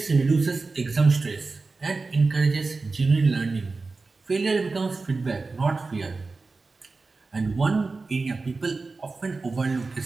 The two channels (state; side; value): quieter; left; 3.9 dB